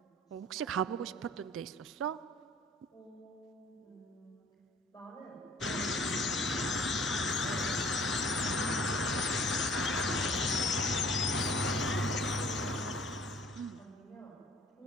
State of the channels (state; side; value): normal; both; correlation 0.52